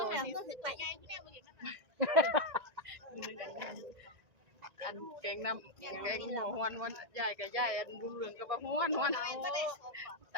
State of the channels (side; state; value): left; late; 1.7 ms